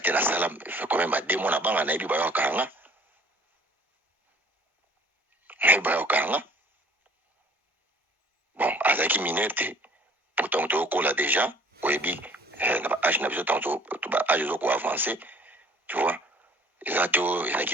nasala fait quand même 2 mois na banga nayebi bayokaka nga mais bayokanga bon azaki minerte pourtant tokola déjà oyebi na ba âge na biso tanto ba âge zo ko avancer tu vois exacto ezaki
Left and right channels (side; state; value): both; normal; correlation 0.54